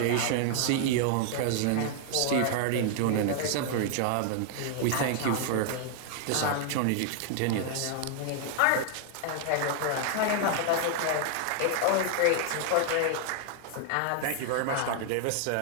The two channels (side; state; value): both; different; correlation 0.00